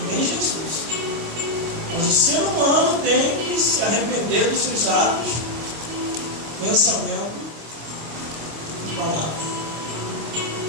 Nem Jesus. Mas o ser humano tem que se arrepender dos seus atos, pensamento e palavra.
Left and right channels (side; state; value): left; late; 25 ms